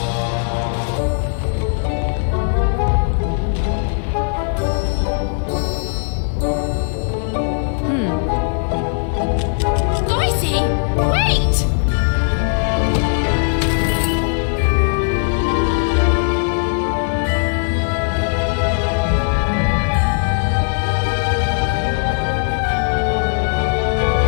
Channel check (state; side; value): silent; right; digital silence